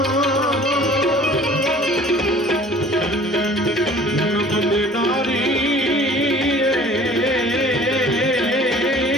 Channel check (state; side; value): normal; both; correlation 0.49